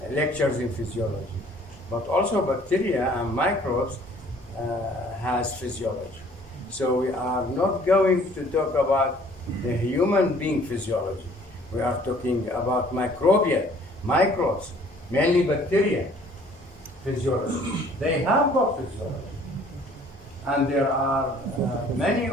lectures in physiology, but also bacteria and microbes has physiology. So we are not going to talk about the human being physiology. We are talking about microbial, microbes, mainly bacteria physiology. They have got physiology. And there are many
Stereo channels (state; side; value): normal; both; correlation 0.56